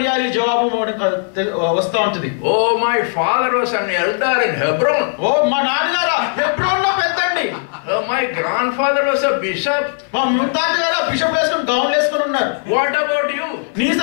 జవాబు వస్తూ ఉంటుంది. Oh, my father was an elder in Hebron. ఓ మా నాన్నగారు హెబ్రోన్ లో పెద్దండి. Oh, my grandfather was a bishop. మా ముత్తాతగారు బిషప్ వేసుకుని గౌన్లు వేసుకుని ఉన్నారు. What about you? నీ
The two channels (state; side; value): silent; right; 59 dB below the other